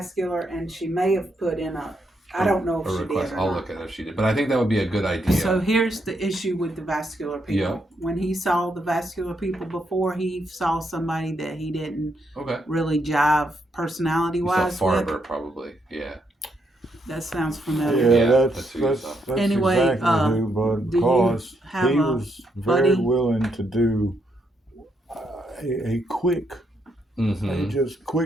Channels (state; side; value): normal; both; correlation 0.78